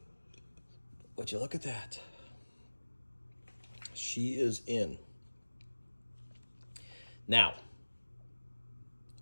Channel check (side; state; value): both; inverted; correlation -1.00